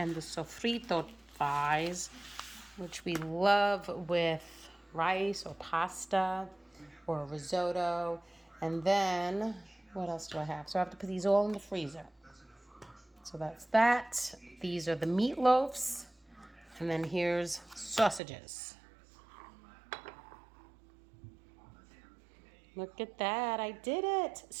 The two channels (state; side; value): drops out; left; at 18.2 s